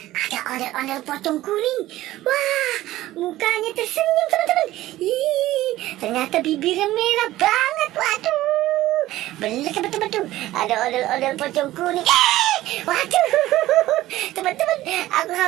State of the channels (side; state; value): left; quieter; 15.7 dB